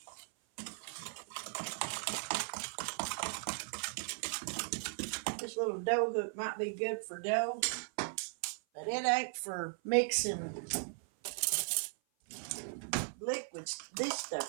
This little dough hook might be good for dough, but it ain't for mixing liquids, this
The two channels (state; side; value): silent; left; 53 dB below the other